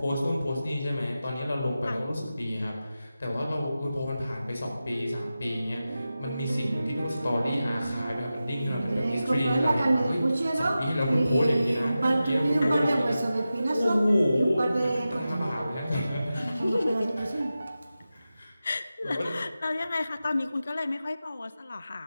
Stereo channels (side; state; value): both; inverted; correlation -0.93